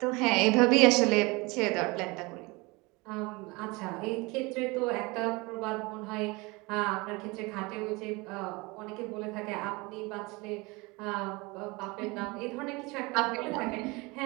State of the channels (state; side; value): quieter; left; 25.1 dB